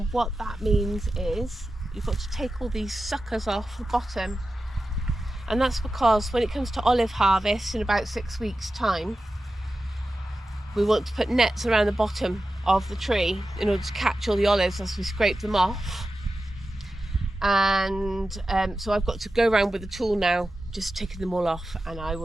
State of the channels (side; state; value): both; normal; correlation 0.93